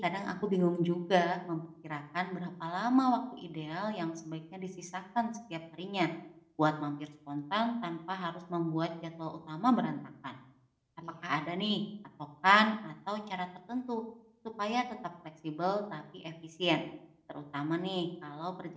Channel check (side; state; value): both; identical; correlation 1.00